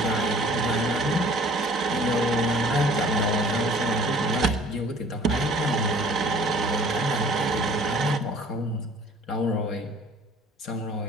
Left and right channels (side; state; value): both; normal; correlation 0.52